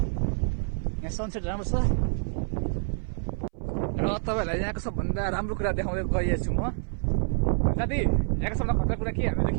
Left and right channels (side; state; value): left; silent; 58 dB below the other